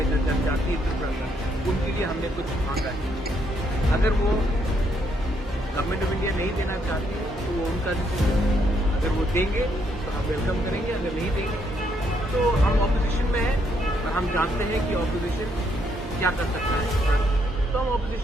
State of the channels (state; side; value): normal; both; correlation 0.73